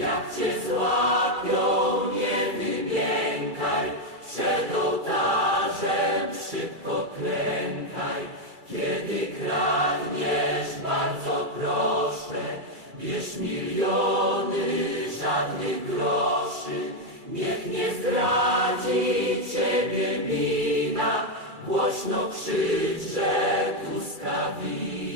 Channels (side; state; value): left; late; 2.3 ms